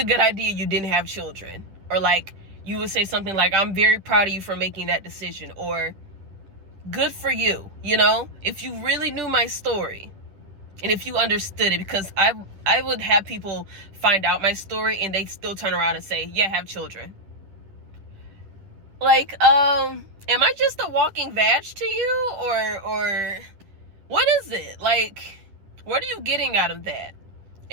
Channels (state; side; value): late; left; 10 ms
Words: good idea you didn't have children. Or like, you would say something like, I'm very proud of you for making that decision, or good for you, you know? If you really knew my story, and if you understood it, because I would have people find out my story and they still turn around and say, yeah, have children. Like, am I just a walking vag to you, or what is it? Like, what are you getting out of that?